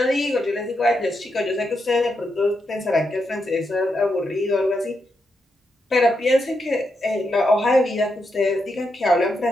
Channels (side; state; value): both; normal; correlation 0.83